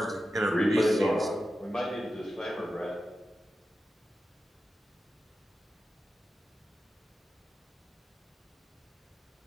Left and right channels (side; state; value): both; normal; correlation 0.92